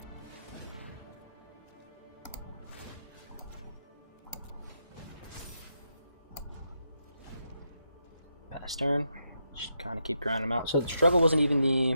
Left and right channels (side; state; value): both; inverted; correlation -0.82